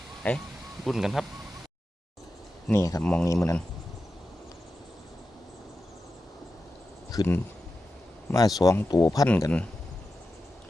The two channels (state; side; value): normal; both; correlation 0.91